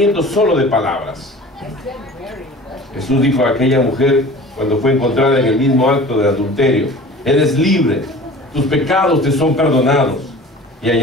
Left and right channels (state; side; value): normal; both; correlation 0.41